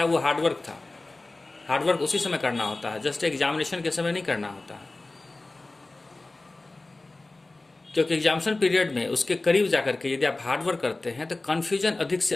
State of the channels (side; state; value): right; quieter; 3.1 dB